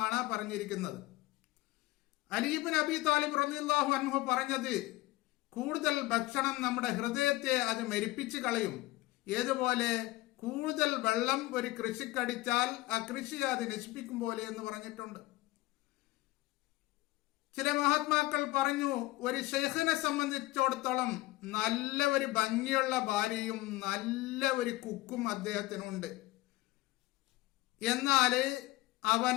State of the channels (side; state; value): right; quieter; 19.8 dB